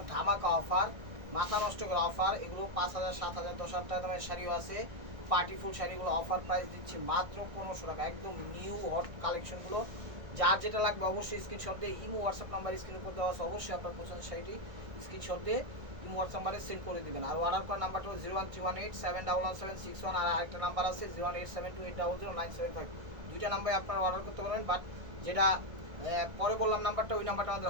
ধামাকা অফার, মাথা নষ্ট করা অফার। এগুলো 5,000, 7,000, 10,000 টাকা দামের শাড়িও আছে। পার্টি ফুল শাড়িগুলো অফার প্রাইস দিচ্ছি মাত্র 1500 টাকা। একদম নিউ হট কালেকশনগুলো। যার যেটা লাগবে অবশ্যই স্ক্রিনশট দিয়ে ইমো হোয়াটসঅ্যাপ নাম্বার স্ক্রিনের উপর দেওয়া আছে, অবশ্যই আপনার পছন্দের শাড়িটি স্ক্রিনশট দিয়ে ইমো হোয়াটসঅ্যাপ নাম্বারে সেন্ড করে দিবেন। আর অর্ডার করার নাম্বারটা হলো 01318711761। আর আরেকটা নাম্বার আছে 01872800975। দুইটা নাম্বারে আপনারা অর্ডার করতে পারবেন। বাট যেটা পরে বললাম নাম্বারটা, ওই নাম্বারটা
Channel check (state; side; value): late; left; 1.6 ms